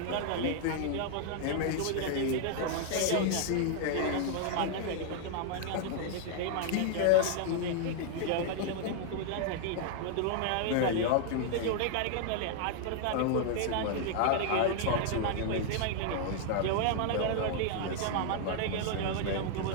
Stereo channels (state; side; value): different; both; correlation 0.00